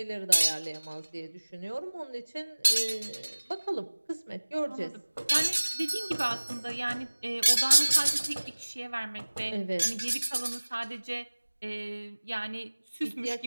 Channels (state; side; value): inverted; both; correlation -1.00